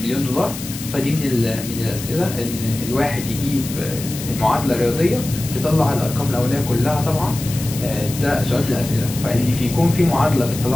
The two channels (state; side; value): noise; left; hiss, 10 dB below the sound